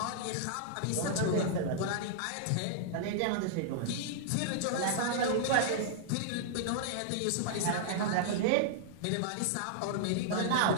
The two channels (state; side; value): different; both; correlation -0.01